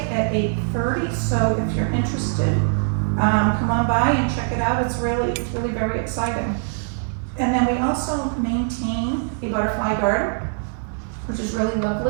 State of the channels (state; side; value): silent; left; digital silence